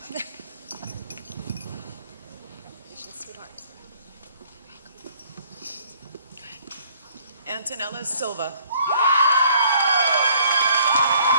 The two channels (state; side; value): inverted; both; correlation -0.60